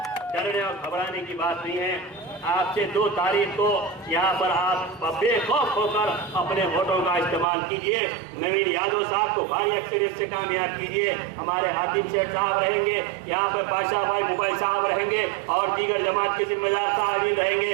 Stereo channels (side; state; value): left; drops out; at 7.5 s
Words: डरने और घबराने की बात नहीं है। आपसे 2 तारीख को यहाँ पर आप बेखौफ होकर अपने वोटों का इस्तेमाल कीजिए। नवीन यादव साहब को भारी अक्सरियत से कामयाब कीजिए। हमारे हातिम शेख साहब रहेंगे, यहाँ पर बादशाह भाई मुबाई साहब रहेंगे और दीगर जमात के जिम्मेदार साहब रहेंगे।